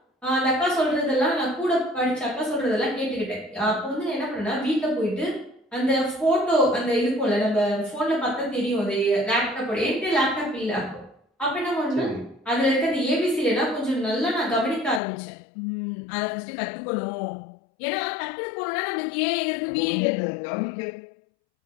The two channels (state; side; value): drops out; right; at 15.0 s